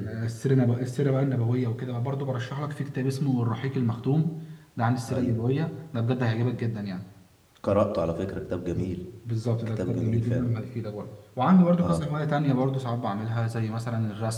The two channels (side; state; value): both; identical; correlation 1.00